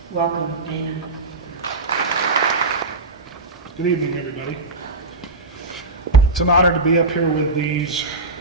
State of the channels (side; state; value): left; quieter; 3.2 dB